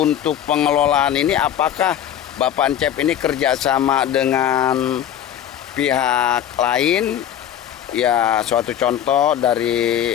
pengelolaan ini apakah Bapak Encep ini kerjasama dengan pihak lain? Ya, suatu contoh dari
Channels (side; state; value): right; quieter; 10.3 dB